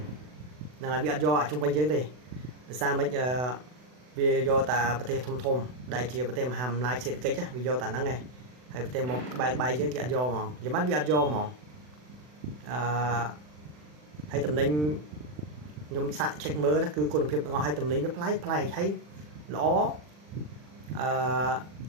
là bị do ở trung quanh dưới đây sao mấy vì do ta bờ tây thông thông đại chia bờ tây hàm lại sẽ cái chứ vì do ta nắng này hay bờ tây một bài bài dưới kia do mà giờ mắt bị do mà hay tầm ninh nhom sạ check mơ đó cứ con phiệp ngon hay tầm ninh với play thấy ló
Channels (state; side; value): late; left; 40 ms